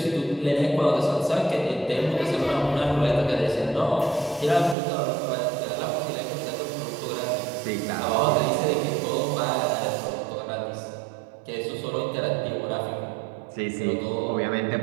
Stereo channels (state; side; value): drops out; left; at 4.8 s